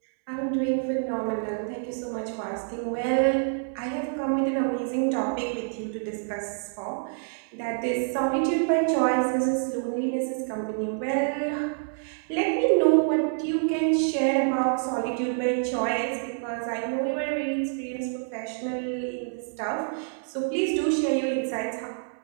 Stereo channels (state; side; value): silent; left; digital silence